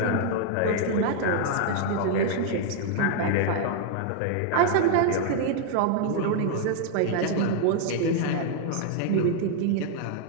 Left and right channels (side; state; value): both; different; correlation 0.00